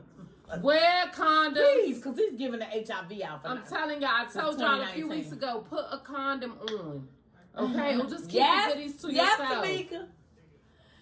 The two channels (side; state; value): both; identical; correlation 1.00